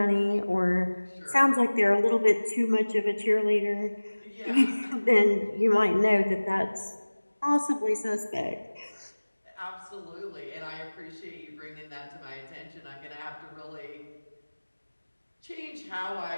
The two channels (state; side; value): inverted; both; correlation -1.00